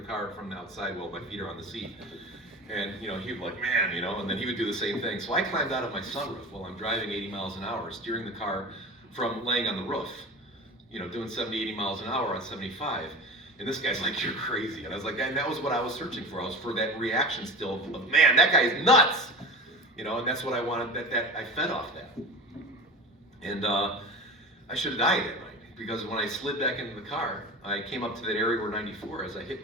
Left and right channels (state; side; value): normal; both; correlation 0.32